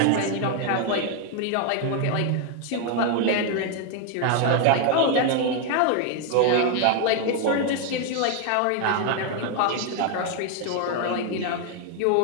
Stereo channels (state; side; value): different; both; correlation 0.01